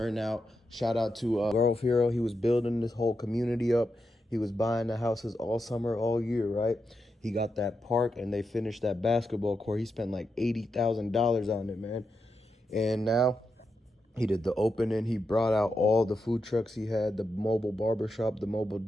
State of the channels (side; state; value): both; normal; correlation 0.86